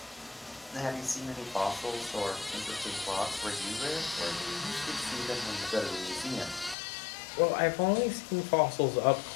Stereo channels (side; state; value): right; drops out; at 6.8 s